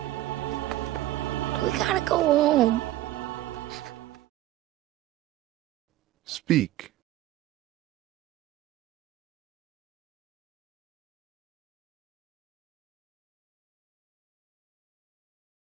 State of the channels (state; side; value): quieter; left; 15.1 dB